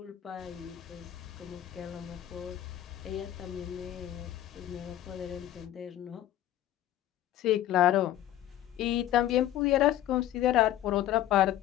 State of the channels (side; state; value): right; quieter; 12.9 dB